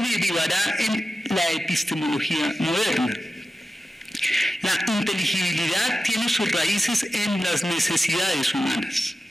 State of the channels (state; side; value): normal; both; correlation 0.93